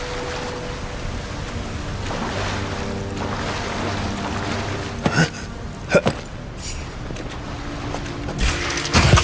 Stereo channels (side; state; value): both; identical; correlation 1.00